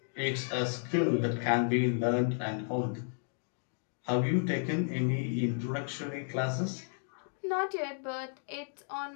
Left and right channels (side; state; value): right; silent; digital silence